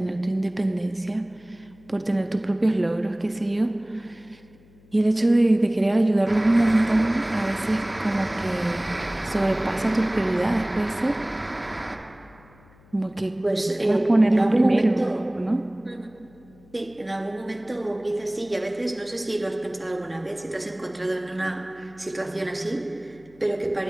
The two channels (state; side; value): noise; left; hum, 27 dB below the sound